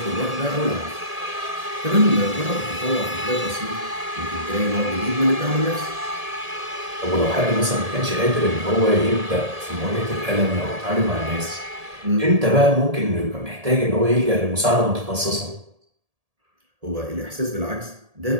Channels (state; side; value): late; left; 1.7 ms